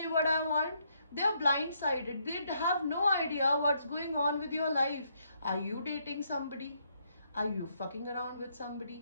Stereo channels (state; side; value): inverted; both; correlation -0.74